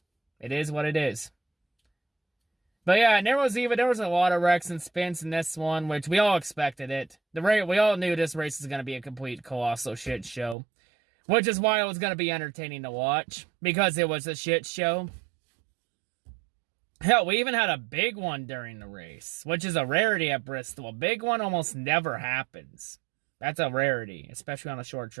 it is what it is. But yeah, and there was a lot of wrecks and spins in this one, which we all expected it. We all knew this race was going to be a complete colossal shit show. Which is why it was going to be entertaining to watch. Because it was a shit show. Hell, we even had a big one during the race. Which is a rarity at Bristol. A big one almost never happens. That's a rarity, especially on a short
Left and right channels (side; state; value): left; drops out; at 10.6 s